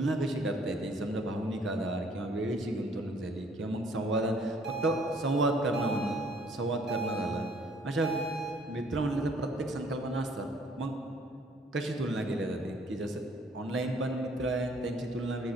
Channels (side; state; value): both; normal; correlation 0.60